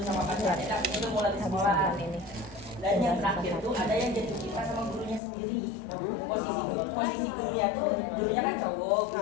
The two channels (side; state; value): right; drops out; at 5.2 s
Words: sama pacarnya, akhirnya tuh mulai di sekolah ini. Dan yang terakhir tuh ada yang jatuh cinta sama gurunya sendiri. Posisi gurunya kan cowok,